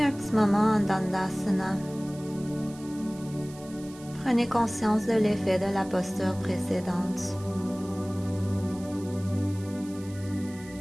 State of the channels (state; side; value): noise; right; hiss, 20 dB below the sound